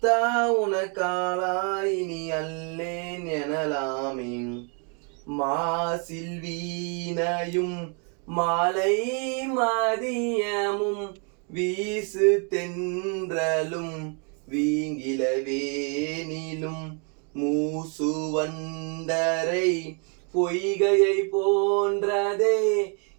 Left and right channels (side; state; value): left; quieter; 38.1 dB